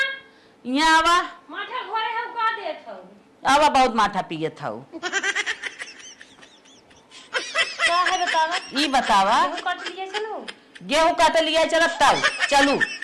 यहाँ आवा माथा घोरे हम का देत हो आवा बहुत माथा पिए था का है बतावा ई बतावा गेहूं काट लिए चलो गेहूं काट लिया चलत ताऊ चलू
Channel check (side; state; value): both; identical; correlation 1.00